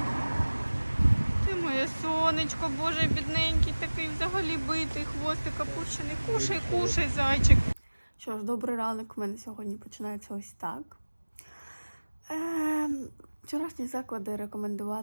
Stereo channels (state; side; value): inverted; both; correlation -1.00